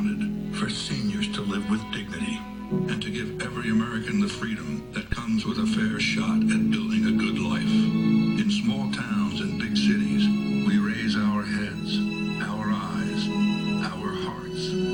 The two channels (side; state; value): both; identical; correlation 1.00